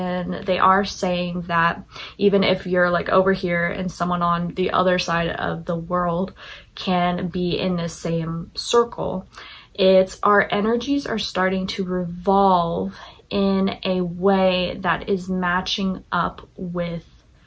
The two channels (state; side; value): identical; both; correlation 1.00